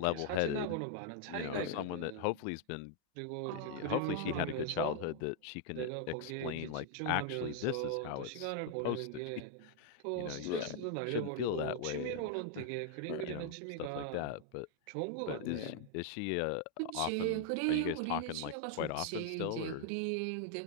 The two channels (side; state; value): both; different; correlation 0.00